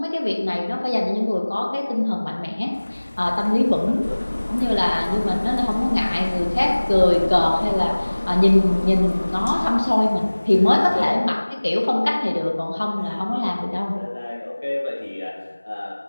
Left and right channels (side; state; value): both; inverted; correlation -1.00